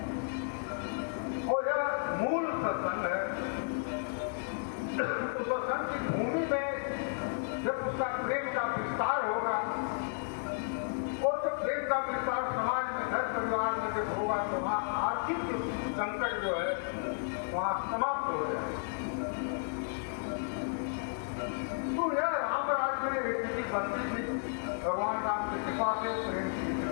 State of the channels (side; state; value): right; silent; digital silence